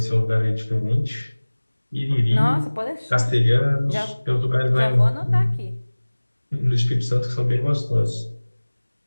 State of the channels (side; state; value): both; inverted; correlation -1.00